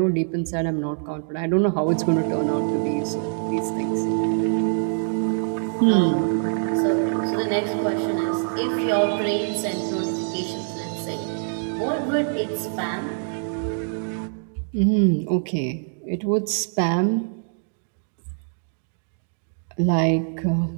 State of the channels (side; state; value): left; silent; digital silence